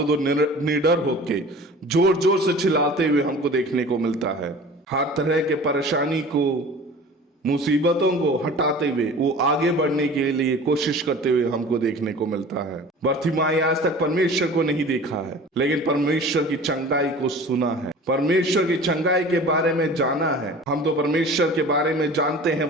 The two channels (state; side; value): normal; both; correlation 0.41